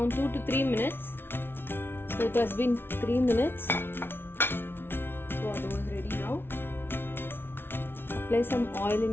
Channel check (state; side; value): late; right; 0.11 ms